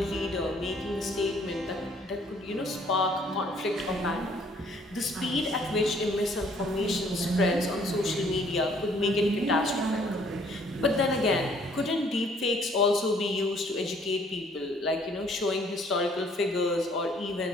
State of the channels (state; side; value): normal; both; correlation 0.61